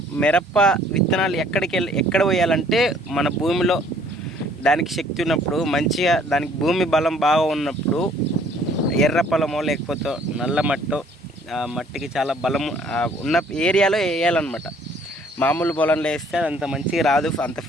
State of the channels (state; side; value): normal; both; correlation 0.59